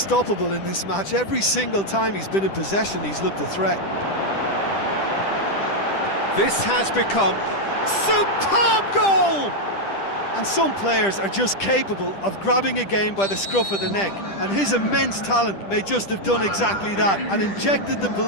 in this match. Every single time he's been in possession, he's looked a threat. This has become superb goal! And some players are just capable of grabbing a game by the scruff of the neck, and his immense talent may just have done exactly that and injected the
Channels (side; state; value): right; late; 10 ms